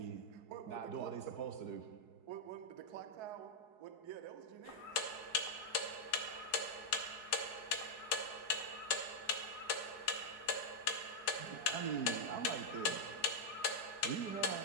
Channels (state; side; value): late; right; 4.7 ms